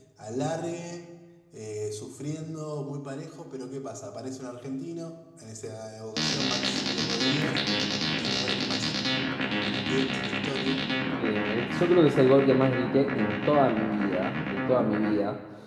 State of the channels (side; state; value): both; identical; correlation 1.00